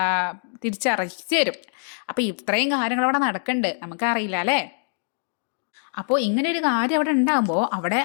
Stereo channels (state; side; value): silent; right; digital silence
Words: തിരിച്ചറിയിച്ച് തരും. അപ്പോൾ ഇത്രയും കാര്യങ്ങളവിടെ നടക്കുന്നുണ്ട്, നമുക്കറിയില്ല അല്ലേ. അപ്പോൾ ഇങ്ങനെ ഒരു കാര്യം അവിടെ ഉണ്ടാകുമ്പോൾ അവിടെ